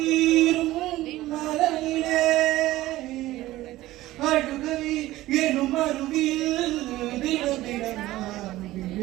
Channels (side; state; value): left; quieter; 16.6 dB